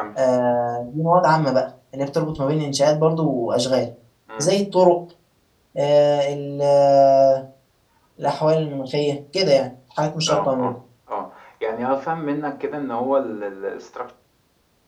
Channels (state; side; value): identical; both; correlation 1.00